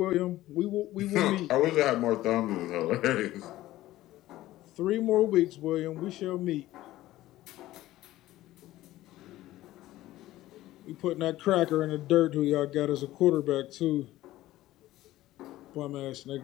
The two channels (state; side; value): quieter; right; 15.7 dB